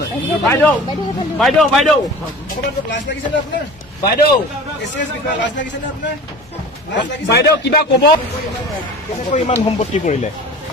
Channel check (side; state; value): both; normal; correlation 0.39